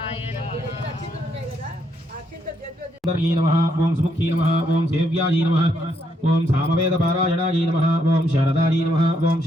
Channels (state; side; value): normal; both; correlation 0.75